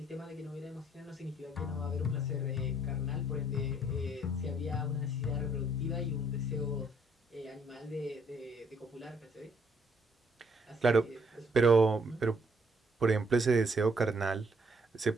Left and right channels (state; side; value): normal; both; correlation 0.67